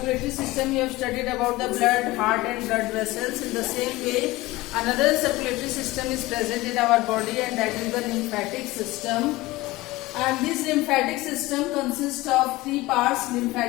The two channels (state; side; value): quieter; right; 19.6 dB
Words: system, you have studied about the blood, heart and blood vessels. In the same way, another circulatory system is present in our body, and that is the lymphatic system. And this lymphatic system consists of three parts: